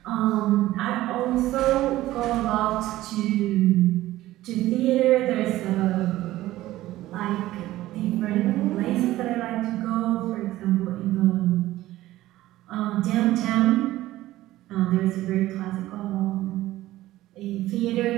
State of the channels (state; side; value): quieter; left; 15.8 dB